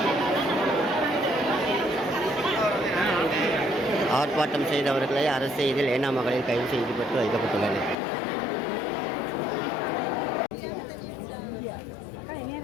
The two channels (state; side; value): drops out; right; at 8.0 s